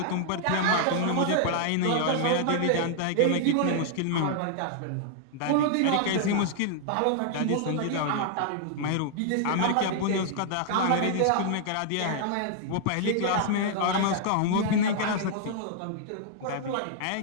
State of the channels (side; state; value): both; different; correlation -0.01